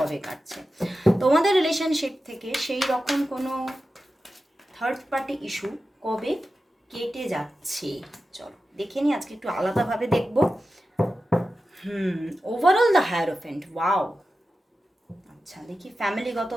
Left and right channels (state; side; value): normal; both; correlation 0.92